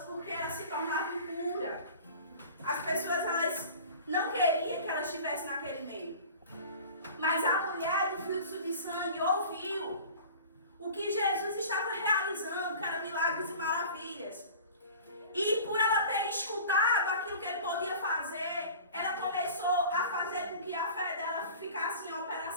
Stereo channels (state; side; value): inverted; both; correlation -0.41